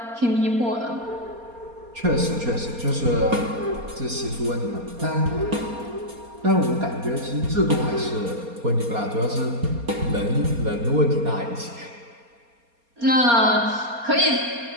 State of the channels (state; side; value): late; left; 4.3 ms